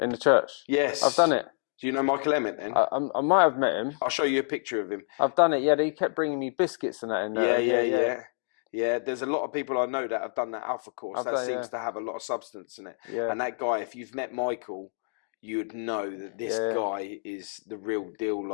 the church. Yes, I've done it. Do you know Michael Emmett then? I might have met him. I'll show you a picture of him. I've done it. Yeah, they kept bringing me biscuits and that in there. Yeah, there's a lot of people I know that have done that Alpha course. That seems to have a lot of substance in it. Yeah. And that guy, if you've met Michael, you would know that this guy is the real deal.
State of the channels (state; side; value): silent; right; digital silence